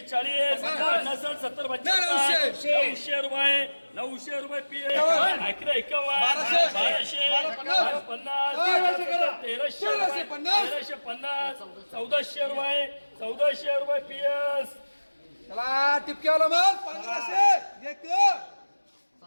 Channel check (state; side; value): inverted; both; correlation -1.00